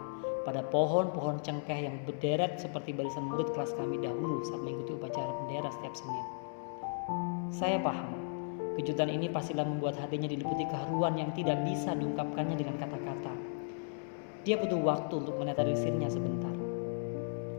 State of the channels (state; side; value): silent; right; digital silence